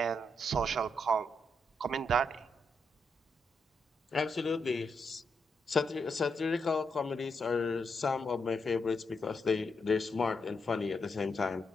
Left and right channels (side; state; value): both; normal; correlation 0.81